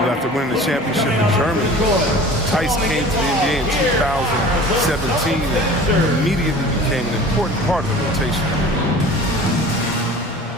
winning the championship in Germany, Tice came to the NBA in 2017 and immediately became an important part of the rotation.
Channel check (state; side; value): normal; both; correlation 0.42